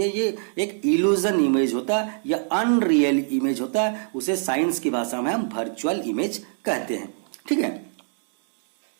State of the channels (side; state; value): left; silent; digital silence